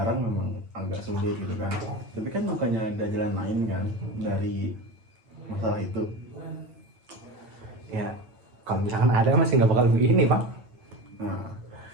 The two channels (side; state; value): left; late; 9.0 ms